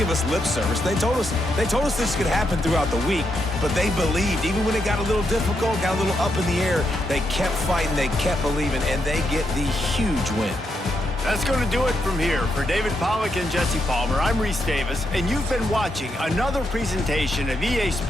us lip service. They told us this could happen throughout the week, but they believed. Even when it got a little difficult, got a little up in the air, they kept fighting, they kept believing, and they get the huge win. That's going to do it from here. For David Pollack and Jesse Palmer, I'm Reese Davis, and you've been watching another presentation of EA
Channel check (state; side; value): normal; both; correlation 0.81